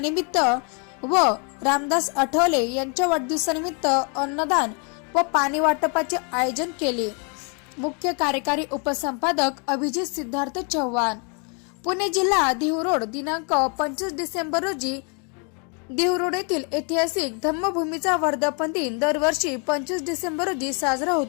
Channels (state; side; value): quieter; right; 37.3 dB